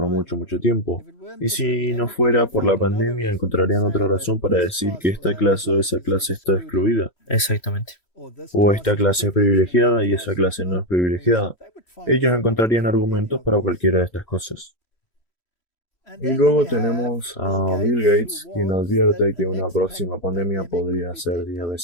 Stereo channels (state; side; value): late; right; 3.1 ms